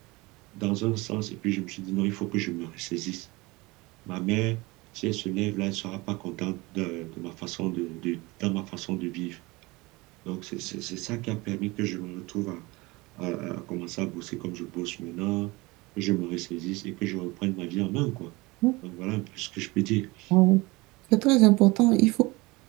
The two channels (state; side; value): quieter; left; 23.1 dB